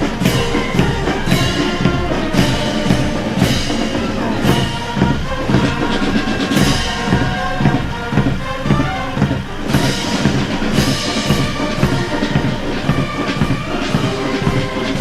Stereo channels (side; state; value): both; identical; correlation 1.00